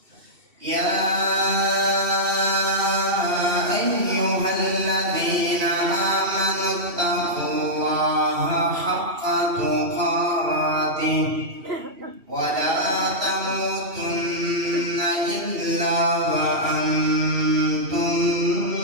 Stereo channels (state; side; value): late; left; 2.8 ms